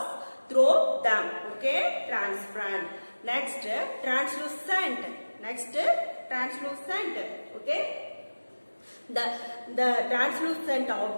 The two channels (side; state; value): both; inverted; correlation -1.00